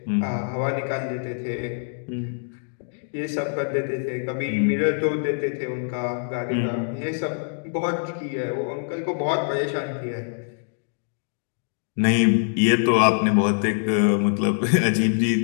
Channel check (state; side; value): silent; right; digital silence